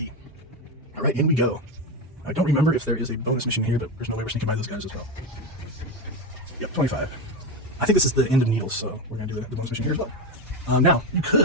All right, in we go. I don't remember if there is a bonus mission here, but there's no way we're sneaking by those guys as well. Yep, 25. I think this is the end of Needles, so we're going to do the bonus mission here as well. Now, you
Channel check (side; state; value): both; normal; correlation 0.15